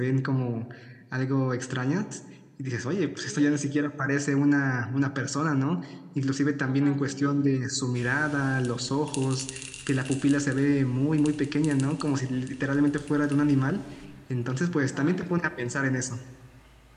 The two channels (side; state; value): both; identical; correlation 1.00